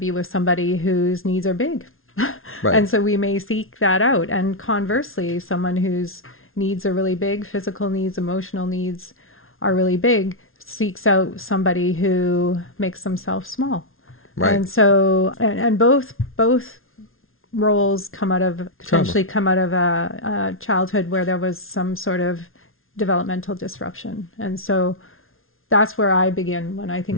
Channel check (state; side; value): late; right; 0.61 ms